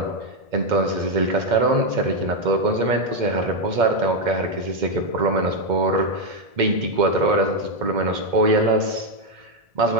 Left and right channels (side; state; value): left; late; 2.1 ms